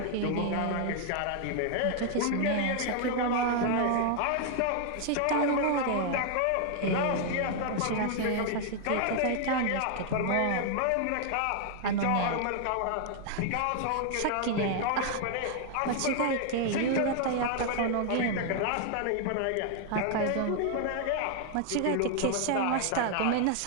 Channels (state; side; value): different; both; correlation 0.00